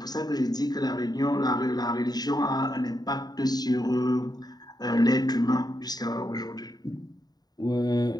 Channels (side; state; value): right; late; 0.19 ms